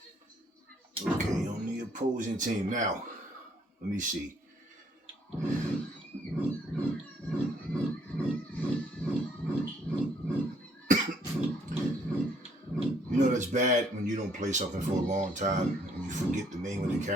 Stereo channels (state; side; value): normal; both; correlation 0.65